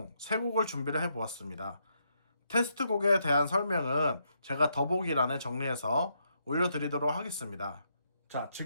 3곡을 준비를 해보았습니다. 테스트곡에 대한 설명은 제가 더보기란에 정리해서 올려드리도록 하겠습니다. 자,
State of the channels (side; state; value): both; inverted; correlation -0.78